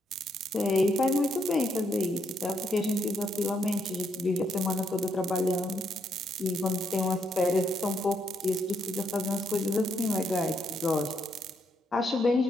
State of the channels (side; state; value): both; normal; correlation 0.76